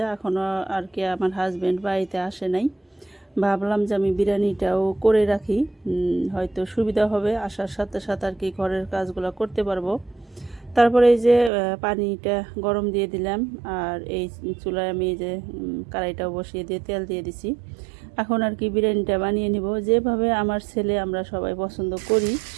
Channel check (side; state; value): left; drops out; at 11.5 s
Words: এখনও আর কি আমার হাজব্যান্ড বাড়িতে আসে নাই। ভাবলাম যে আমি বিরিয়ানিটাও করে রাখি, হয়তো সুবিধা হবে, আসার সাথে সাথে আর কি ঘরের কাজগুলো করতে পারবো। তারপরে এই যে পানিটা গরম দিয়ে দিলাম, আর এই চুলায় আমি এই যে কড়াইটাও বসিয়ে দিয়ে তেল দিয়ে দিছি। এখন আর কি বিরিয়ানিটা বানিয়ে নিব, যেভাবে আমার ছেলে আমরা সবাই পছন্দ করি